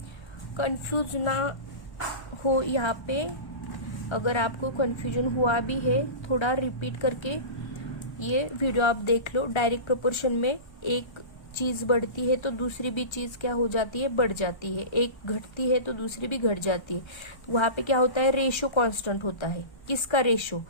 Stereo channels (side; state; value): right; late; 1.3 ms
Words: कंफ्यूज ना हो यहाँ पे, अगर आपको कंफ्यूजन हुआ भी है थोड़ा रिपीट करके ये वीडियो आप देख लो। डायरेक्ट प्रोपोर्शन में एक चीज बढ़ती है तो दूसरी भी चीज क्या हो जाती है, बढ़ जाती है, एक घटती है तो दूसरी भी घट जाती है। वहां पे क्या होता है, रेशो कांस्टेंट होता है। किसका रेशो,